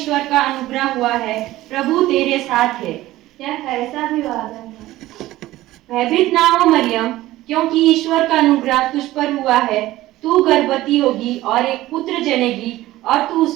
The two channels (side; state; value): left; quieter; 16.3 dB